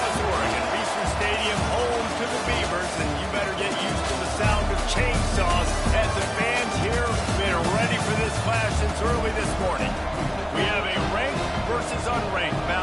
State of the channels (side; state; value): both; identical; correlation 1.00